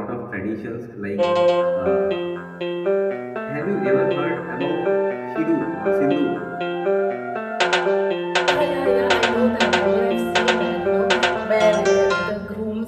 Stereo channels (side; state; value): both; identical; correlation 1.00